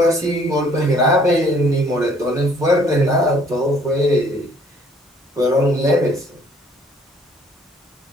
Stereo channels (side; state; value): both; normal; correlation 0.60